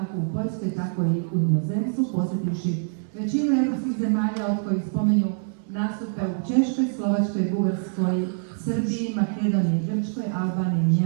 kako u Poljskoj, tako i u inozemstvu, posjetivši većinu europskih zemalja od kojih spominju nastupe u Češkoj, Slovačkoj, Bugarskoj, Srbiji, Makedoniji, Grčkoj, Albaniji,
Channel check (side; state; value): left; silent; digital silence